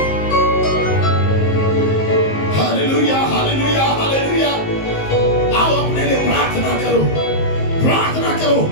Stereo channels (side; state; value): right; late; 19 ms